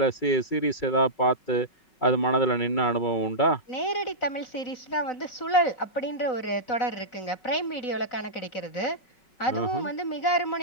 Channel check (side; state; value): right; late; 5.4 ms